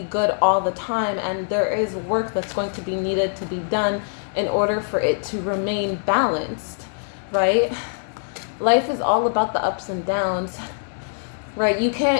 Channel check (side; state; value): right; silent; digital silence